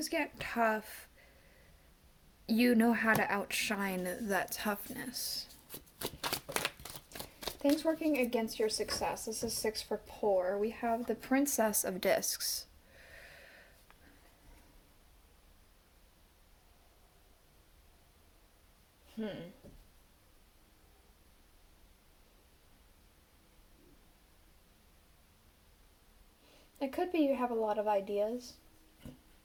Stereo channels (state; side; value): identical; both; correlation 1.00